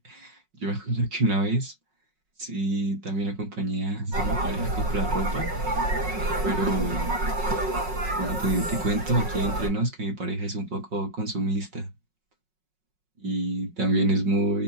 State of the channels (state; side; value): late; left; 5.4 ms